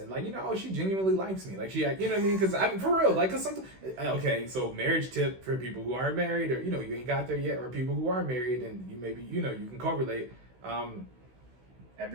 she genuinely likes me, like she, you know what I mean? Because I mean, for real, like, cause something. Okay, so marriage tip for people who aren't married, or you ain't got there yet, or people who are married and you maybe you can correlate.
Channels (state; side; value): late; left; 16 ms